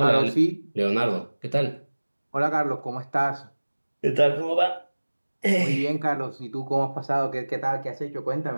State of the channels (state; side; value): inverted; both; correlation -1.00